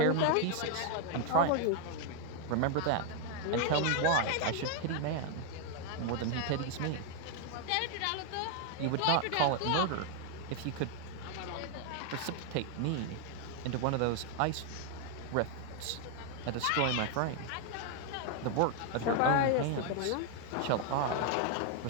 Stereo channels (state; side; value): different; both; correlation 0.00